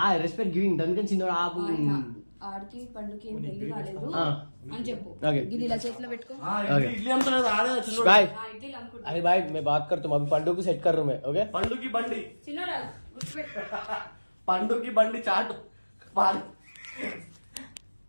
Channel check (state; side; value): inverted; both; correlation -1.00